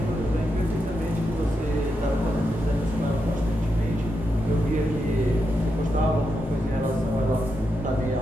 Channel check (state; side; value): normal; both; correlation 0.85